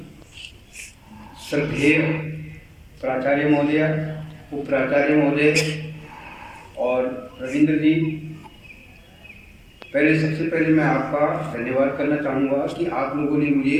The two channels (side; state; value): both; identical; correlation 1.00